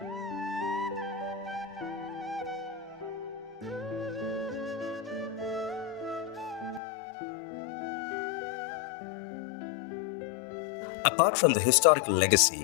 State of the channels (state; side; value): drops out; right; at 6.8 s